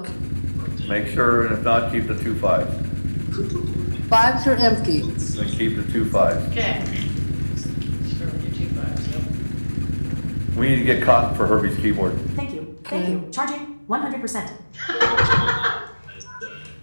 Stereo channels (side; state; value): both; inverted; correlation -1.00